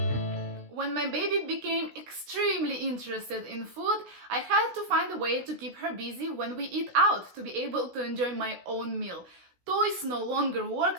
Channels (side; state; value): left; late; 16 ms